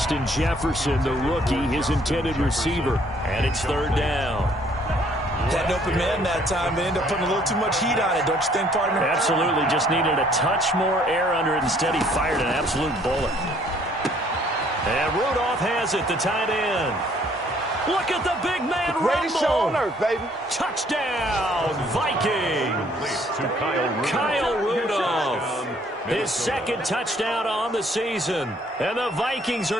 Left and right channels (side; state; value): both; normal; correlation 0.62